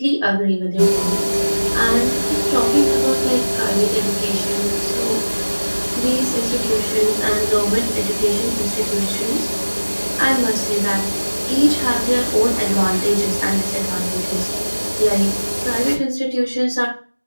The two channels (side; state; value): both; inverted; correlation -1.00